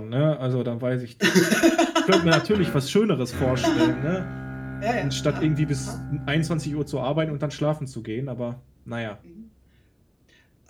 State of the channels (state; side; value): identical; both; correlation 1.00